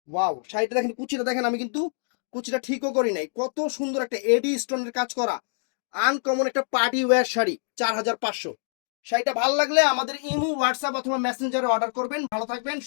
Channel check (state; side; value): silent; right; digital silence